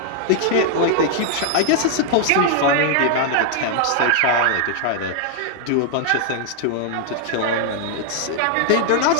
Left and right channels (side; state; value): both; different; correlation -0.01